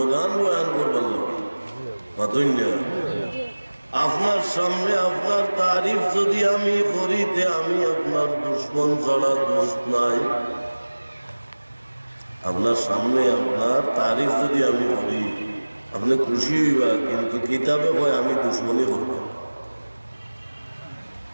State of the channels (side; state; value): both; inverted; correlation -1.00